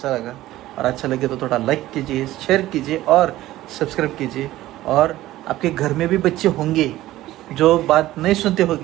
लगा, और अच्छा लगे तो थोड़ा लाइक कीजिए, शेयर कीजिए और सब्सक्राइब कीजिए. और आपके घर में भी बच्चे होंगे जो बात नहीं सुनते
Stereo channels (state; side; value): quieter; left; 15.6 dB